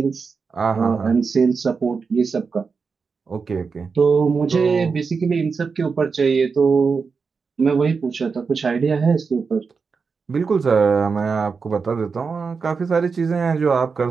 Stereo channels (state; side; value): quieter; left; 5.1 dB